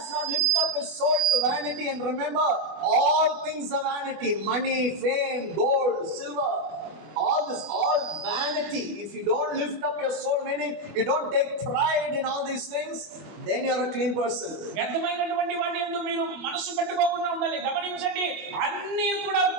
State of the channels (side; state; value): left; late; 25 ms